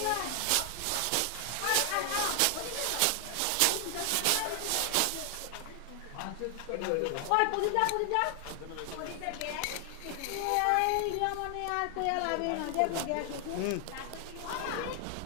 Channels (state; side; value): different; both; correlation 0.00